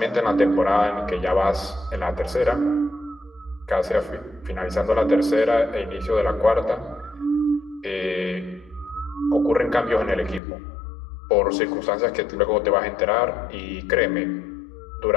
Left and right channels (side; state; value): right; drops out; at 10.4 s